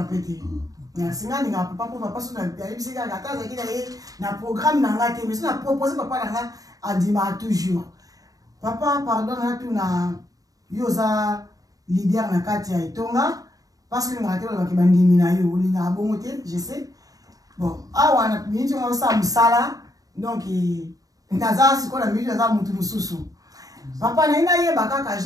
pété. Merci nga papa pour papa sur na bisika la case qui na programme na ngate mais na proposer papa na a dima toujours. Papa pardon na tout na yoza leader na kati ya Etonga parce que ngate ba kibandimi na yo linga bongote je sais. Bon, awa na miniti ngo sa musala donc ndaza siko na miniti za mutu mususu. Papa na ina ye bakaka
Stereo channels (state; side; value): late; left; 0.17 ms